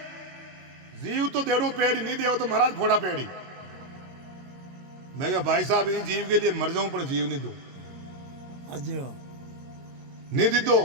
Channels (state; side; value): late; left; 22 ms